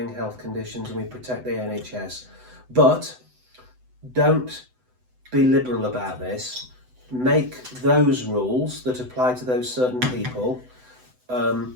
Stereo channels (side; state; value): left; late; 7.9 ms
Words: health conditions, and we protect the NHS. But don't be liberal about this. Make those rules that apply to those certain people